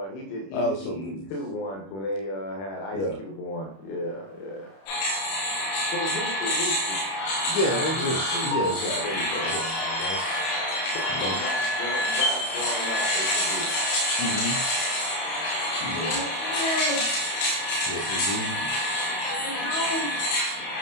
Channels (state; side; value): late; right; 31 ms